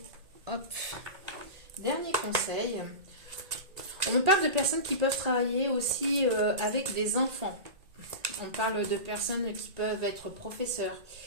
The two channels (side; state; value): left; late; 1.8 ms